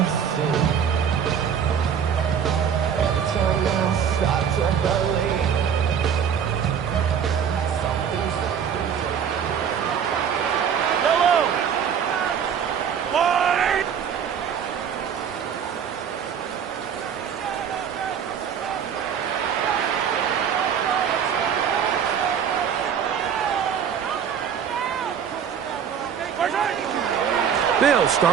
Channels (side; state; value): left; quieter; 7.9 dB